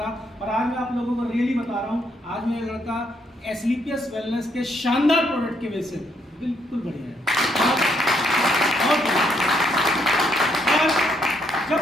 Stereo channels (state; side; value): normal; both; correlation 0.74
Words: और आज मैं आप लोगों को रियली बता रहा हूँ, आज मेरा लड़का स्लीपियस वेलनेस के शानदार प्रोडक्ट की वजह से बिल्कुल बढ़िया है। जब